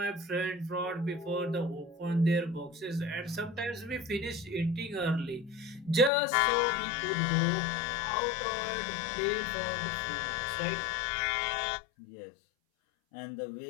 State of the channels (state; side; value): drops out; right; at 6.1 s